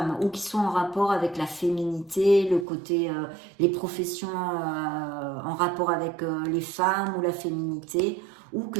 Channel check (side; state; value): left; drops out; at 2.7 s